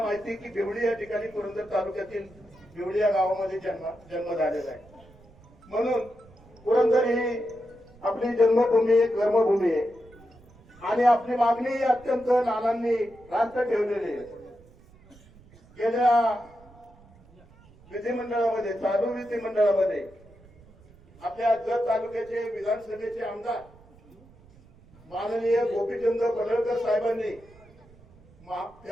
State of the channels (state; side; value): noise; right; rumble, 25 dB below the sound